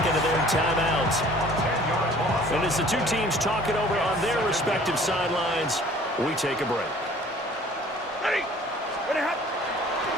of their timeouts. And as the two teams talk it over on their respective sidelines, we take a break.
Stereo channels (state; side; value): normal; both; correlation 0.51